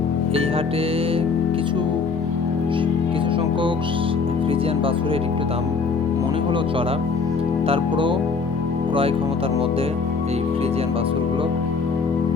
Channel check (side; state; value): right; quieter; 4.8 dB